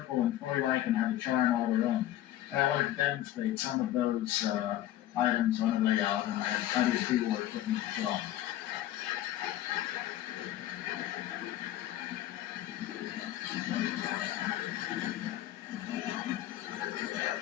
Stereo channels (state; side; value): quieter; right; 13.3 dB